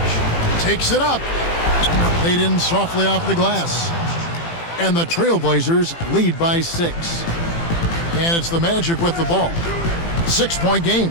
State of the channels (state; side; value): late; right; 18 ms